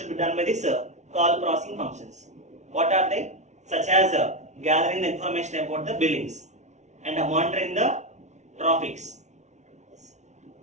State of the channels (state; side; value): late; left; 0.33 ms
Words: be done by this call processing functions. What are they? Such as gathering the information about the billings and monitoring the traffics,